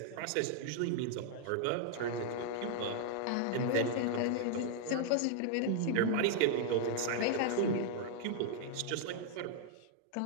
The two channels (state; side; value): different; both; correlation -0.01